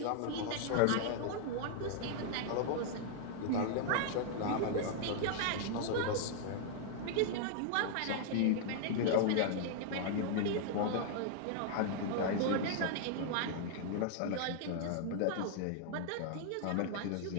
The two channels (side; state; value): both; different; correlation -0.01